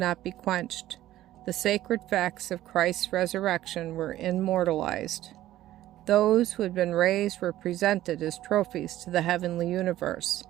be quenched. The sacred facts of Christ's resurrection were immortalized. Those who had been raised were presented as trophies to the heavenly universe,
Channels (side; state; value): left; quieter; 14.2 dB